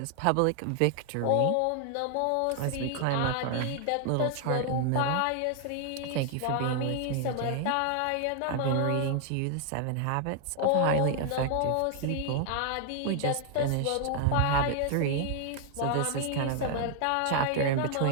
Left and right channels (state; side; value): different; both; correlation 0.00